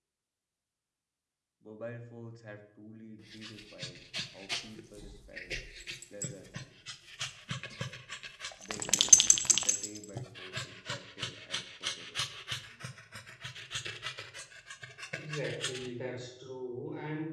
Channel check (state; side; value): identical; both; correlation 1.00